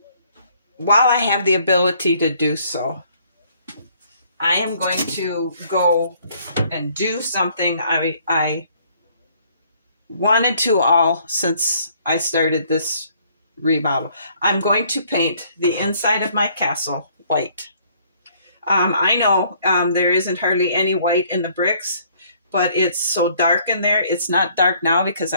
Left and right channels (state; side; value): inverted; both; correlation -0.62